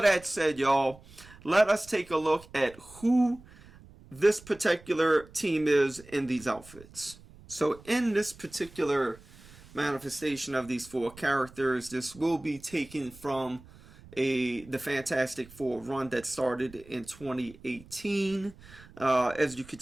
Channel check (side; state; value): right; noise; rumble, 22 dB below the sound